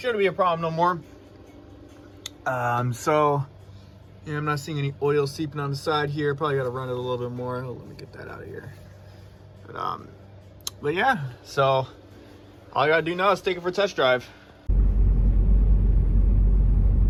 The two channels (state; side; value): identical; both; correlation 1.00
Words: be a problem no more. So yeah, I'm not seeing any oil seeping on the side here. Probably got to run it a little bit more. Oh, let me get that out of here. But yeah, so all I gotta do now is take it for a test drive.